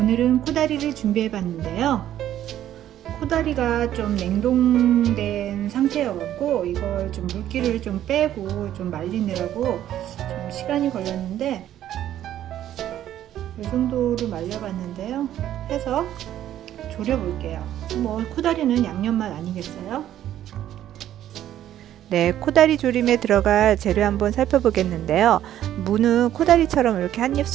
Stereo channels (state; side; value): quieter; left; 11.8 dB